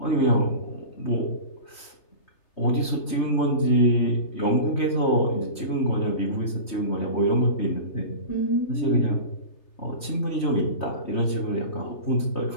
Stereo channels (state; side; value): late; right; 3.2 ms